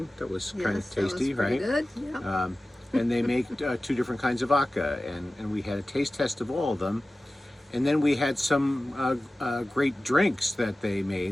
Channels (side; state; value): both; normal; correlation 0.96